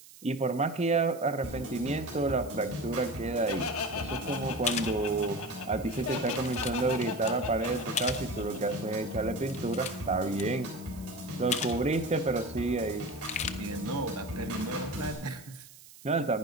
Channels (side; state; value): right; noise; hiss, 20 dB below the sound